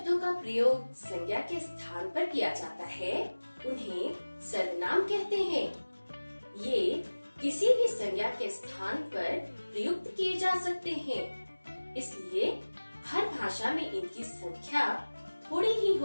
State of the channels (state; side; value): inverted; both; correlation -1.00